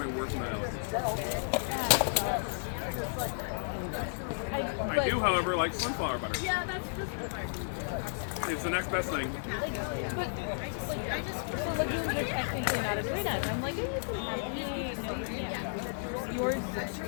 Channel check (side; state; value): right; silent; 56 dB below the other